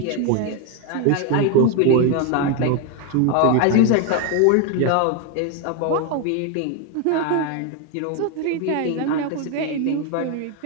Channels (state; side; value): different; both; correlation 0.01